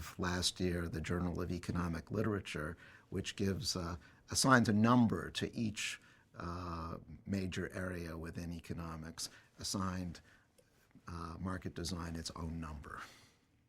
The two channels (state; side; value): identical; both; correlation 1.00